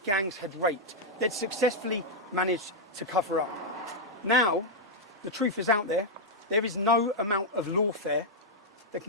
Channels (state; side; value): normal; both; correlation -0.04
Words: gangs had raped, they'd successfully managed to cover up. Now, the truth is out there. There is no amount of lawfare that